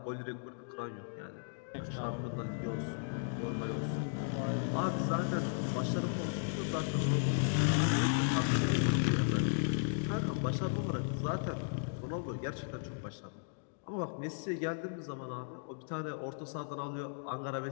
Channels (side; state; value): right; silent; digital silence